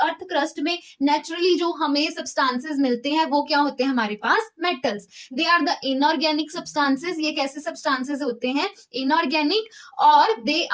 crust में नेचुरली जो हमें सब्सटेंसेस मिलते हैं वो क्या होते हैं हमारे पास metals. They are the inorganic substances. ये कैसे सब्सटेंसेस होते हैं इनऑर्गेनिक, और they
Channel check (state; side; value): identical; both; correlation 1.00